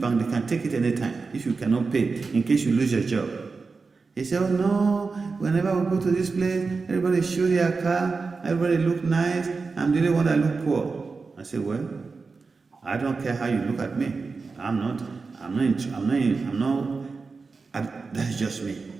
They can take it anytime if you cannot pay, in case you lose your job. He said, oh no, whenever we go to this place, everybody show their car, everybody look nice, I'm the only one that look poor. I said, well, I don't care how you look at me. That's just me.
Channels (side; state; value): left; quieter; 4.4 dB